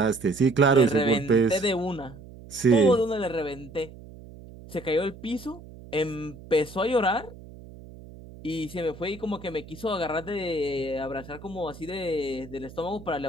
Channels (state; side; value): noise; right; hum, 17 dB below the sound